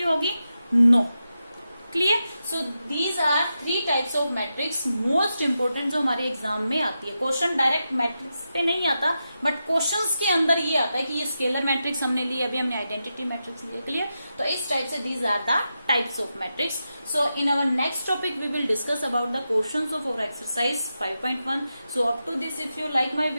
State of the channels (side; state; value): both; inverted; correlation -0.88